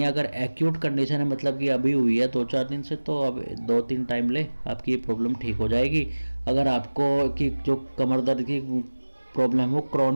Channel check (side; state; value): both; inverted; correlation -1.00